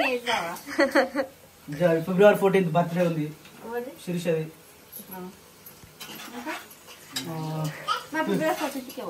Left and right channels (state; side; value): identical; both; correlation 1.00